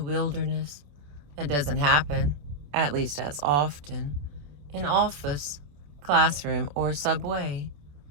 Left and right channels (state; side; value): late; left; 28 ms